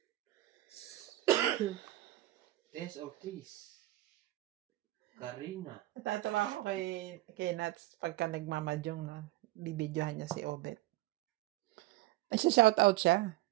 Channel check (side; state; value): left; quieter; 17.0 dB